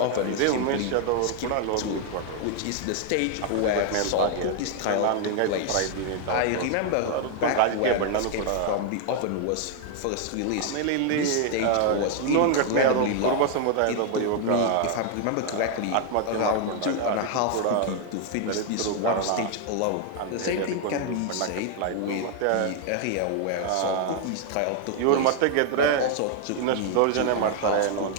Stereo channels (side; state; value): both; different; correlation 0.00